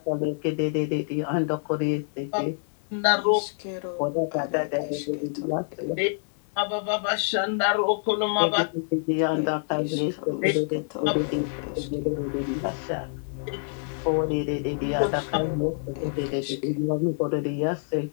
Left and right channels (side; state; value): right; silent; digital silence